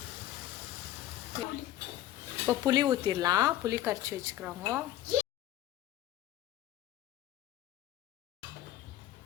இப்போ புளி ஊற்றிடலாம். புளி கரைச்சி வச்சுக்கிறாங்க.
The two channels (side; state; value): right; quieter; 13.3 dB